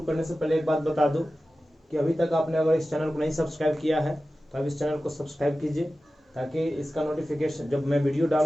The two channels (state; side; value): normal; both; correlation 0.95